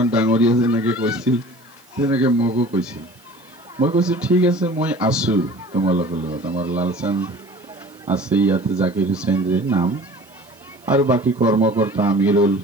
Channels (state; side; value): noise; right; hiss, 29 dB below the sound